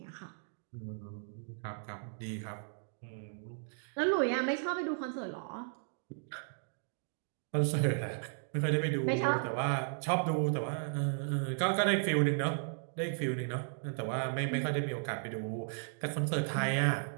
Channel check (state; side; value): silent; left; digital silence